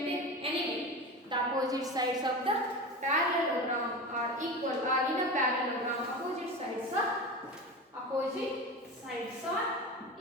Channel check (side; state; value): both; normal; correlation 0.27